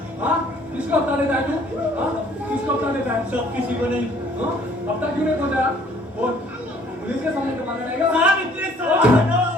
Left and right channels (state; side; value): normal; both; correlation 0.58